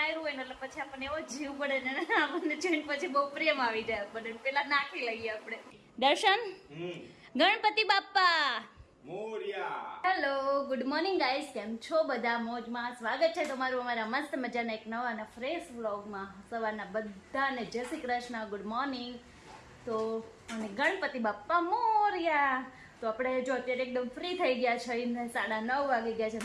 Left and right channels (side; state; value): both; identical; correlation 1.00